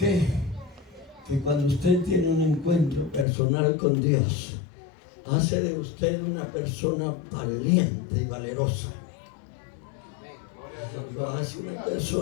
Que cuando usted tiene un encuentro personal con Dios, hace de usted una persona valiente y valerosa. Lo hace una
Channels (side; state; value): right; drops out; at 3.2 s